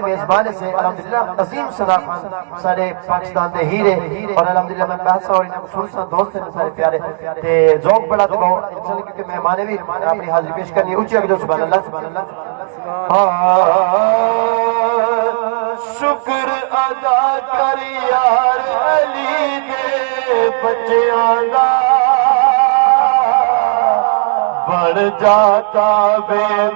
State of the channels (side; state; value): left; silent; digital silence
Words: میزبان سے الحمدللہ عظیم صدا خان سارے پاکستان دے ہیرے اور الحمدللہ میں کہا سا اور انہاں سن سا دوست ہیں سارے پیارے تے ذوق بڑا تے بہو انشاءاللہ کیونکہ مہمانے بھی اپنی حاضری پیش کرنی اونچی آگے جو سبحان اللہ۔ شکر ادا کر یار علی دے بچیاں دا بڑھ جاتا